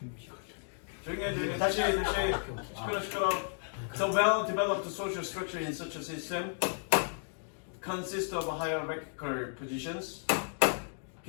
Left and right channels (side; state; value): right; silent; digital silence